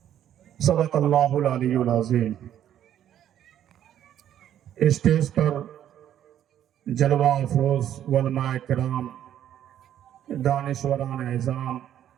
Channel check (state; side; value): quieter; left; 10.8 dB